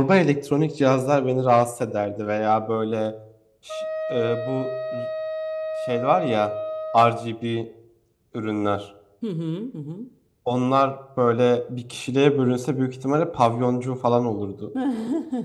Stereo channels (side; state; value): both; identical; correlation 1.00